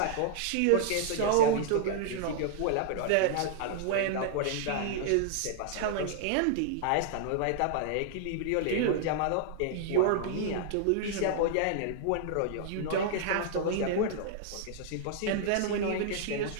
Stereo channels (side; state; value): both; different; correlation -0.01